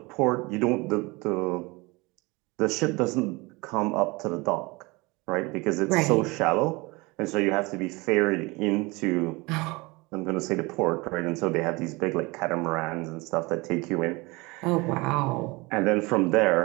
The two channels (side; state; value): left; quieter; 24.8 dB